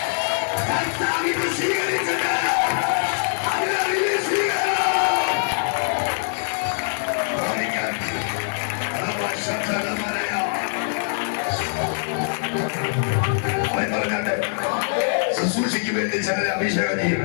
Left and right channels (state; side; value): silent; right; digital silence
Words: സ്വീകരിച്ചത്. ശുശ്രൂഷയ്ക്ക് വേണ്ടി ചിലരെ അഭിഷേകം ചെയ്യും.